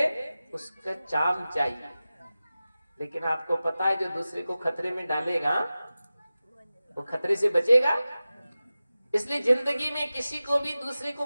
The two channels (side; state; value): both; inverted; correlation -0.95